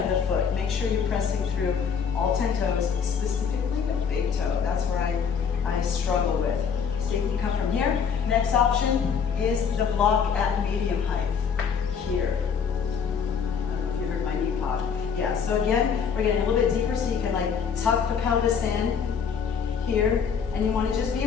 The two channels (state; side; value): quieter; right; 6.6 dB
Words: of the foot. Make sure you're pressing through all 10 toes, specifically the big toe. That's where I struggle with. So you can come from here. Next option is the block at medium height, here. I don't know if you heard my knee pop. Yeah, so again, we're getting a little bit deeper so you can like tuck the pelvis in here, and you want to just be